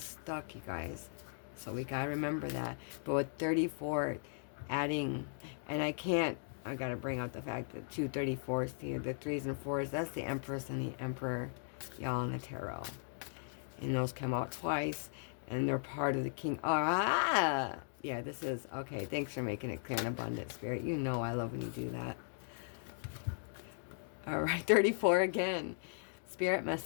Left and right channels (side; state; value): right; silent; digital silence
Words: stuck, you guys. So we gotta remember that. But with 34, adding, and I gotta bring out the fact that 2 34s here, the 3s and 4s, that's the Empress and the Emperor, y'all, in the tarot. And those come out twice, and they're part of the King. Ah! Yeah, this is, okay, thanks for making it clear and abundant, Spirit. You know I love when you do that. All right, 34 again. Spirit